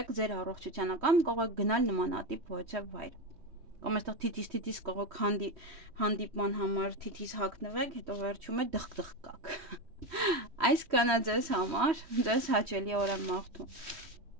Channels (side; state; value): left; late; 3.1 ms